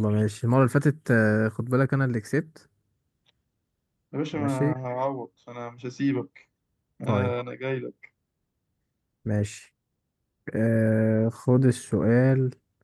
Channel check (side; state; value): both; identical; correlation 1.00